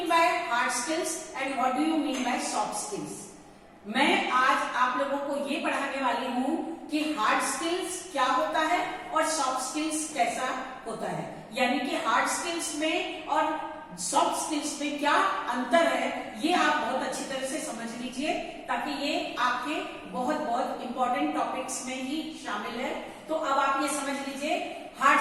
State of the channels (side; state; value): both; identical; correlation 1.00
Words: by hard skills and what do you mean by soft skills? मैं आज आप लोगों को ये पढ़ाने वाली हूँ कि हार्ड स्किल्स क्या होता है और सॉफ्ट स्किल्स कैसा होता है, यानी कि हार्ड स्किल्स में और सॉफ्ट स्किल्स में क्या अंतर है, ये आप बहुत अच्छी तरह से समझ लीजिए ताकि ये आपके बहुत बहुत इंपॉर्टेंट टॉपिक्स में ही शामिल है। तो अब आप ये समझ लीजिए